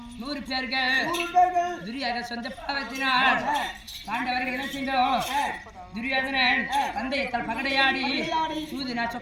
100 பேர்கள் துரியோதன சொந்த பாவத்தினால் பாண்டவர்கள் என்ன செய்தோம்? துரியோதனன் தந்தையத்தால் பகடையாடி சூதினா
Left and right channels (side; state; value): both; identical; correlation 1.00